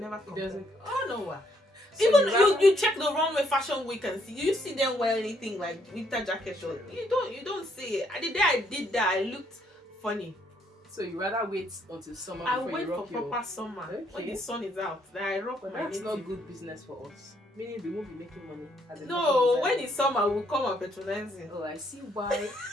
come. It doesn't. Oh no. So even you check the runway fashion week and see you see them wear anything like winter jacket short. You don't see it. The day I did that, I looked funny. So you rather wait until summer I before wait you rock for proper summer when the sun is out. Then I rock But my that's native. not good business for us. Meaning we won't be making money. As a No, market when designer. it's summer, we'll come and patronize it. Oh, I see why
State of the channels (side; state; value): both; normal; correlation 0.70